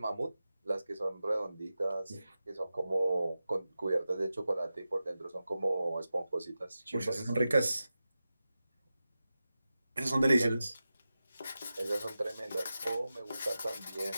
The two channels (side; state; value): both; inverted; correlation -0.93